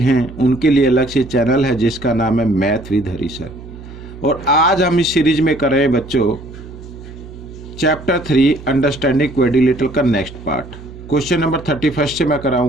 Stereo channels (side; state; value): right; noise; hum, 15 dB below the sound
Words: उनके लिए अलग से चैनल है जिसका नाम है मैथ विद हरी सर। और आज हम इस सीरीज में कर रहे हैं बच्चों चैप्टर 3 अंडरस्टैंडिंग क्वाड्रिलेटरल का नेक्स्ट पार्ट। क्वेश्चन नंबर 31 से मैं